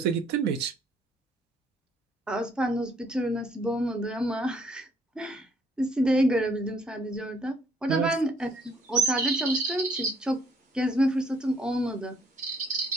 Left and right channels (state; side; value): normal; both; correlation 0.66